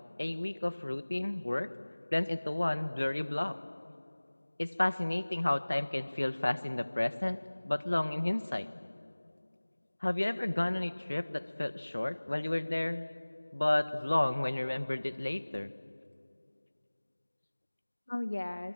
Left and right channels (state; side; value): inverted; both; correlation -1.00